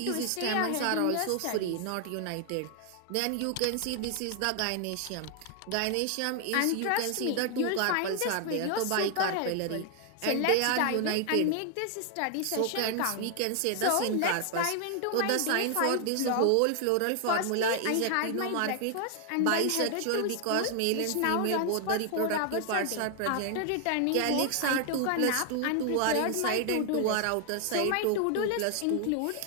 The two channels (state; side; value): different; both; correlation 0.00